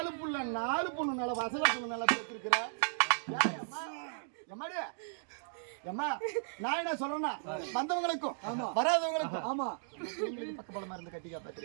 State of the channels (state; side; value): silent; left; digital silence